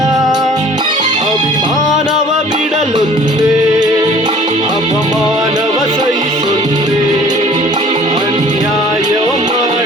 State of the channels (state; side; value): normal; both; correlation 0.51